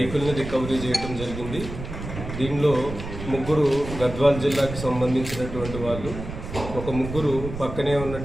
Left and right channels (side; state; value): right; noise; rumble, 9 dB below the sound